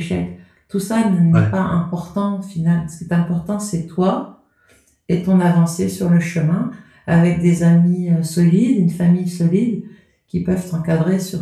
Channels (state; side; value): identical; both; correlation 1.00